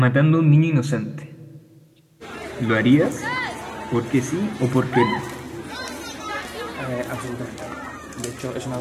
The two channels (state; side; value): identical; both; correlation 1.00